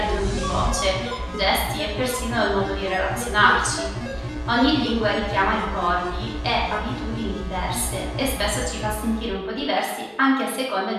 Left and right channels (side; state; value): both; identical; correlation 1.00